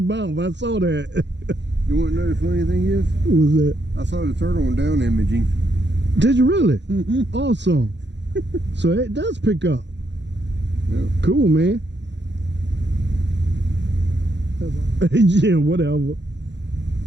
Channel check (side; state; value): left; late; 0.52 ms